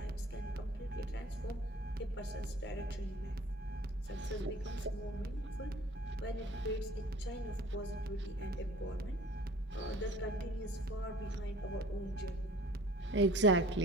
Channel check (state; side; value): normal; both; correlation 0.49